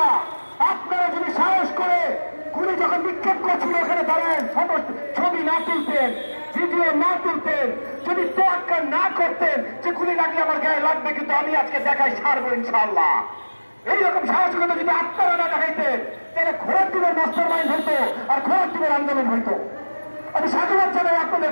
আপনারা যদি সাহস করে গুলি যখন নিক্ষেপ করছিল ওখানে দাঁড়ান, ছবি না তুলতেন, ভিডিও না তুলতেন, যদি তোয়াক্কা না করতেন যে গুলি লাগলে আমার গায়ে লাগবে কিন্তু আমি আজকে দেখাই ছাড়বো ইনশাআল্লাহ, এইরকম সাহসিকতা যদি আপনারা না দেখাইতেন, তাহলে ঘোড়ার টিমের মাস্টার মাইন্ড হইতো আর ঘোড়ার টিমের আন্দোলন হইতো। আমি সাধুবাদ জানাই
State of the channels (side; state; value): both; inverted; correlation -1.00